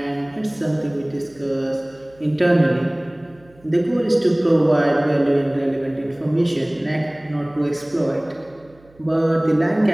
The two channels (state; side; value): noise; right; hum, 28 dB below the sound